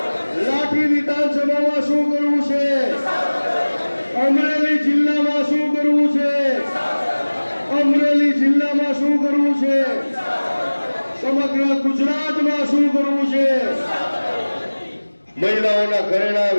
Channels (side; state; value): both; inverted; correlation -1.00